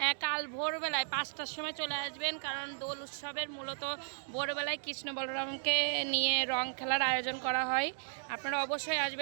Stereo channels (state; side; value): silent; left; digital silence